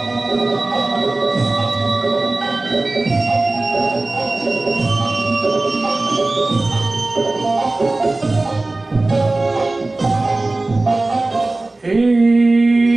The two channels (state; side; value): quieter; left; 3.0 dB